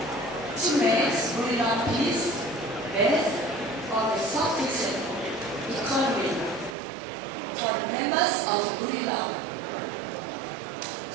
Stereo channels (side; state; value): left; drops out; at 6.8 s